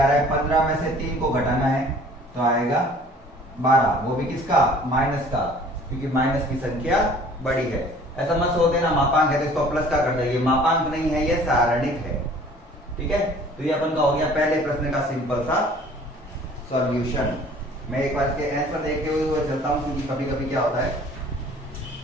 रहा है 15 में से 3 को घटाना है तो आएगा 12, वो भी किसका माइनस का, क्योंकि माइनस की संख्या बड़ी है। ऐसा मत सोच देना मापांक है तो इसको प्लस का कर देंगे, मापांक नहीं है ये सारणिक है। ठीक है, तो ये अपन का हो गया पहले प्रश्न का सिंपल सा सॉल्यूशन। मैं एक बार इसके आंसर देखते हुए चलता हूं, क्योंकि कभी कभी क्या होता है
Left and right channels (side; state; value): both; normal; correlation 0.51